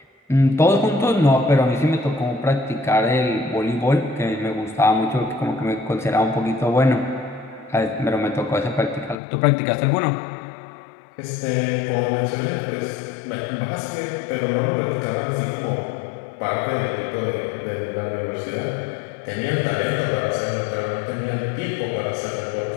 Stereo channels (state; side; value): drops out; right; at 9.2 s